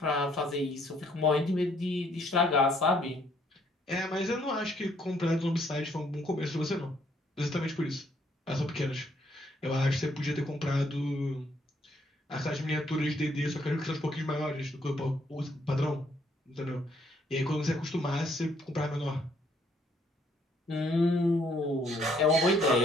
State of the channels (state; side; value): normal; both; correlation 0.68